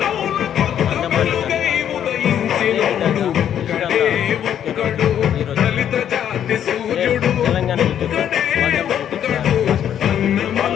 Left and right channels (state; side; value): quieter; right; 9.7 dB